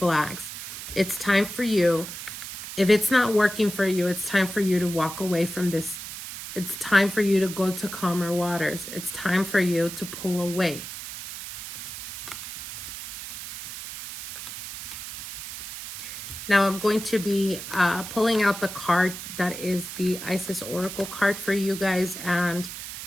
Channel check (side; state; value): right; noise; hiss, 9 dB below the sound